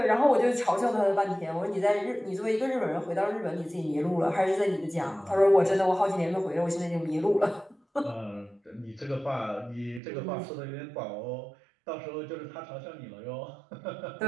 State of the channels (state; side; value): drops out; left; at 10.0 s